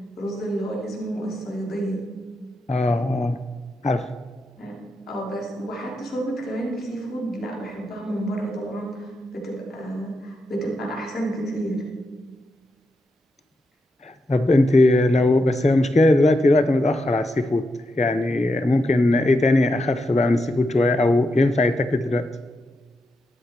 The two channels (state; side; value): normal; both; correlation 0.85